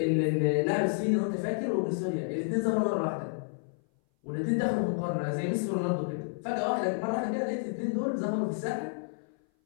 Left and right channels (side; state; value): right; silent; 57 dB below the other